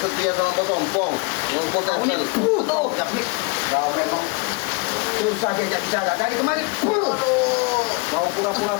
sama bos Ompong. Bos Kau ini Tyson. tuh, Jabri. Kau memang susah diajak bicara. Dari kemarin, Aduh. kau pura-pura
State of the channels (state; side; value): quieter; right; 30.1 dB